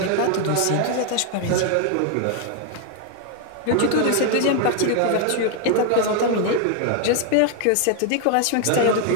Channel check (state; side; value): different; both; correlation 0.00